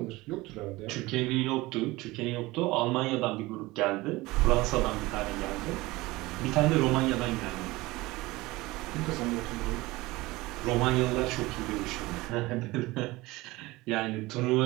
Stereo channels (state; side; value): quieter; left; 20.5 dB